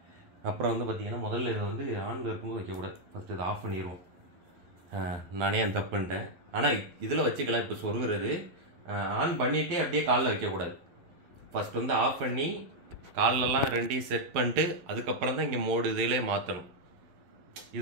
அப்புறம் வந்து பார்த்தீங்கன்னா முதல்ல இதை வந்து ஆன் இருக்கும்போது வைக்கக்கூடாது. ஃபஸ்ட்டு இதை ஆஃப் பண்ணிடுவோம். நானே அந்த தப்பு பண்ணிட்டேன். ஆனால் இதில் வச்சுக்கலாம். இப்போ சொருகிறது ஆன் பண்ணிவிட்டே அப்படியே காலில் வைக்கக்கூடாது. ஃபஸ்ட் வந்து ஆஃப் பண்ணி காலெல்லாம் 2 செட் பண்ணிட்டு அதுக்கப்புறம் தான் இங்கே மோடு இதிலே மாற்றணும்.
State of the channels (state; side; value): late; left; 11 ms